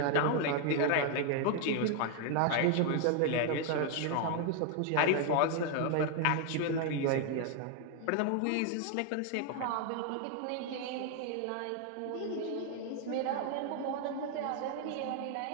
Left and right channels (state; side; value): different; both; correlation 0.00